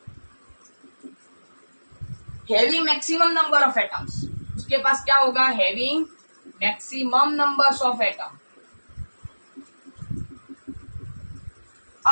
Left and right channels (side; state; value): both; inverted; correlation -1.00